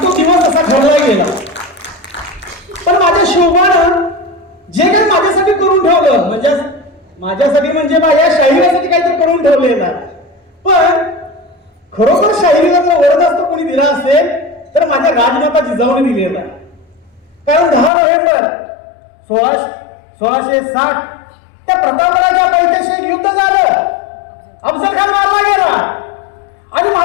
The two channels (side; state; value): right; drops out; at 17.9 s